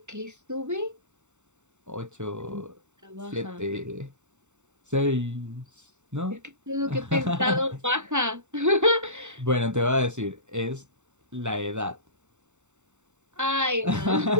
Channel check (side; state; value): left; late; 0.84 ms